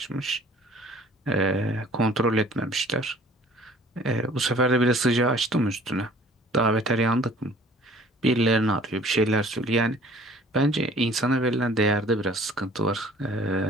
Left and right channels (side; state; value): both; normal; correlation 0.53